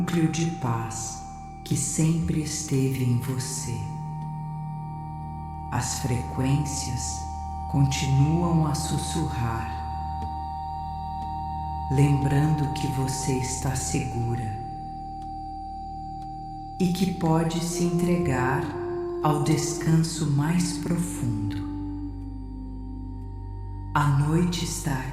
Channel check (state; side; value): identical; both; correlation 1.00